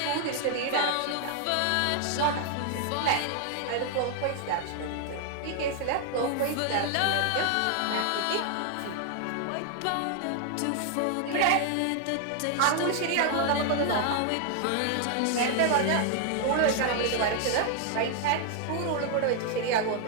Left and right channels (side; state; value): both; different; correlation 0.00